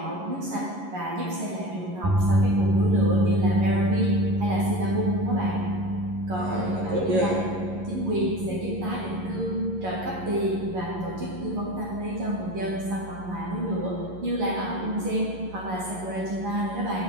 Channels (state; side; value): late; left; 11 ms